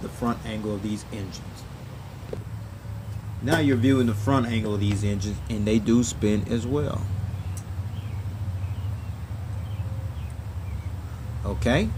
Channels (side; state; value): both; identical; correlation 1.00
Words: front angle of these engines. Now you're viewing the front angle of these engines, and they do spin as well. Okay.